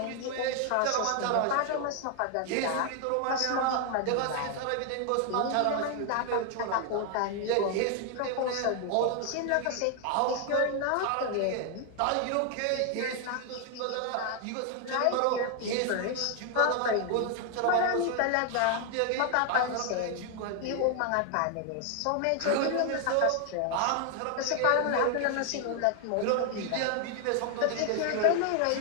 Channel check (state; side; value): different; both; correlation 0.00